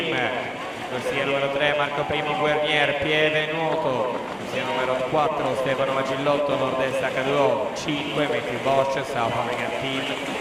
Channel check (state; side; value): identical; both; correlation 1.00